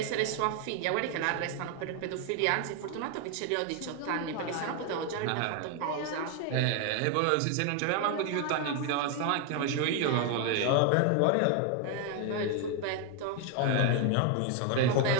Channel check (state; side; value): different; both; correlation 0.01